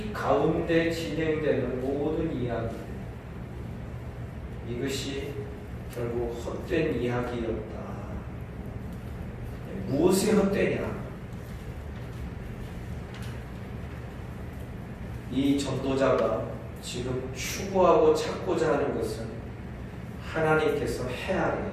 가운데 진행되는 모든 이야기, 이것이 결국 헛된 이야기였다. 무엇이 헛되냐? 이 전도자가 지금 추구하고 찾고자 하는 것은 하나님께서 해 아래,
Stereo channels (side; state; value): both; identical; correlation 1.00